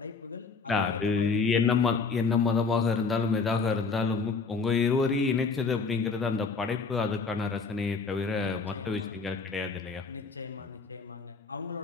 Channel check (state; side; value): quieter; right; 4.7 dB